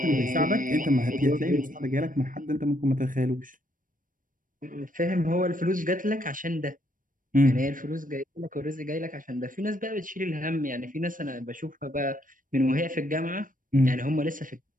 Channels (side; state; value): left; late; 0.39 ms